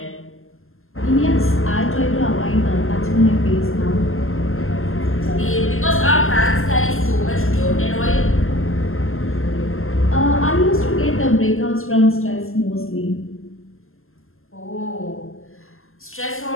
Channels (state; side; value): late; right; 0.61 ms